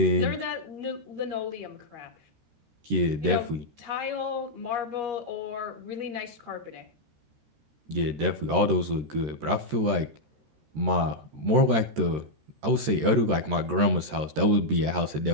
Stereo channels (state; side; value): late; left; 13 ms